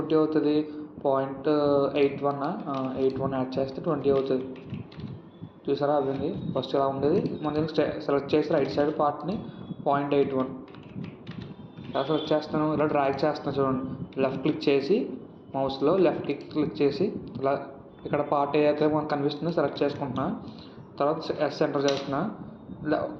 అవుతుంది. 0.81 యాడ్ చేస్తే 20 అవుతుంది. చూసారా, అవ్వింది. ఫస్ట్ ఇలా ఉండేది. మనం దీనికి సెలెక్ట్ చేసి రైట్ సైడ్ పార్ట్ని 0.81 ఇలా సెలెక్ట్ చేస్తాను. ఇలా డ్రాగ్ చేస్తాను చూడండి. లెఫ్ట్ క్లిక్ చేసి మౌస్లో లెఫ్ట్ క్లిక్ చేసి ఇలా ఇక్కడ పార్ట్ ఏదైతే మనకు కనిపిస్తుందో సెలెక్ట్ చేసుకుంటున్నా. తర్వాత S ఎంటర్ చేస్తున్నా.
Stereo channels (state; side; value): identical; both; correlation 1.00